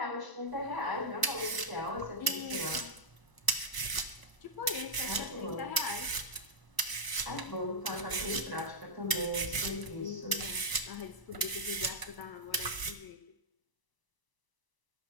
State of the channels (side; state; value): right; late; 1.0 ms